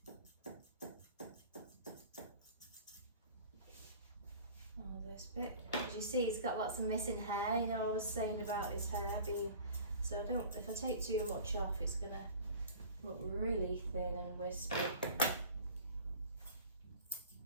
first bit. As you see, he's got lots of missing hair. You know, I was saying about his hair being, so if I take too much off, it's gonna look really thin and wispy.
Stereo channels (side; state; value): both; inverted; correlation -0.42